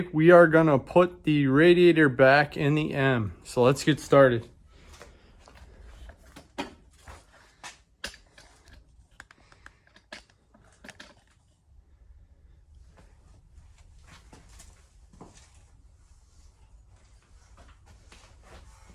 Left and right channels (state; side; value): identical; both; correlation 1.00